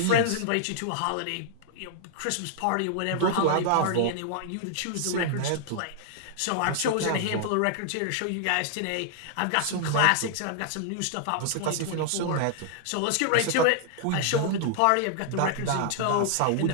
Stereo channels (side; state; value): both; different; correlation -0.01